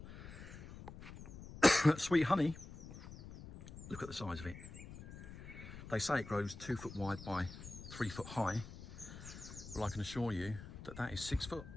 Sweet Honey, look at the size of it. They say it grows 2 foot wide by 3 foot high. Well, I can assure you that is 6 foot.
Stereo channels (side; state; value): left; noise; rumble, 13 dB below the sound